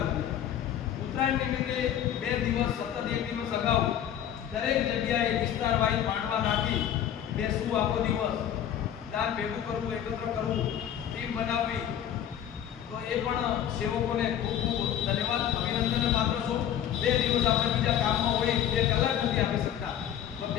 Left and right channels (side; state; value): right; quieter; 10.1 dB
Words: ઉત્તરાયણ નિમિત્તે 2 દિવસ સતત 1 દિવસ અગાઉ દરેક જગ્યાએ વિસ્તાર વાઇઝ માંડવા નાખી બેસવું આખો દિવસ દાન ભેગું કરવું એકત્ર કરવું ટીમ બનાવવી તો એ પણ સેવકોને ખૂબ ખૂબ ધન્યવાદ અભિનંદનને પાત્ર છું 2 દિવસ આપણે બીજા કામમાં હોય 2 કલાક નથી આપી શકતા તો